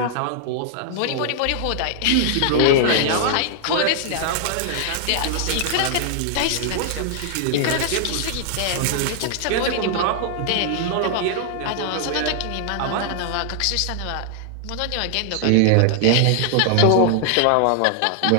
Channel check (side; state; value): both; different; correlation 0.00